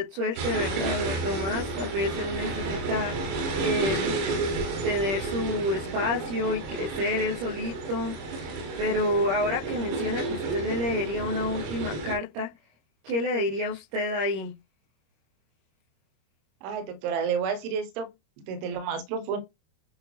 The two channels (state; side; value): late; left; 26 ms